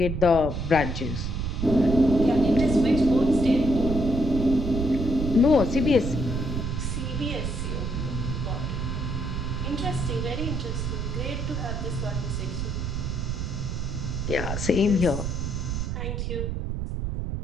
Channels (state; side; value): noise; right; rumble, 2 dB below the sound